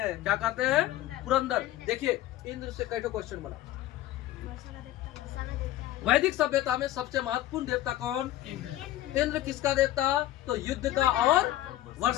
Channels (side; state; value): right; quieter; 14.4 dB